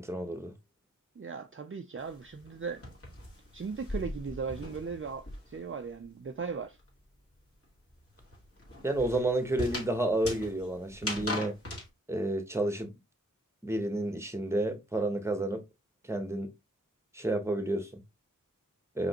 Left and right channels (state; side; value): normal; both; correlation 0.65